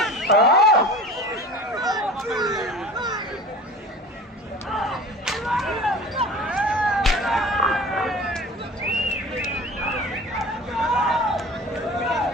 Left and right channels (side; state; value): both; normal; correlation 0.39